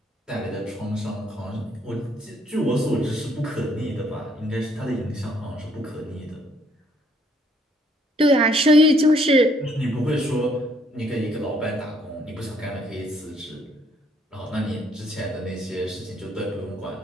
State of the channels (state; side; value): normal; both; correlation 0.66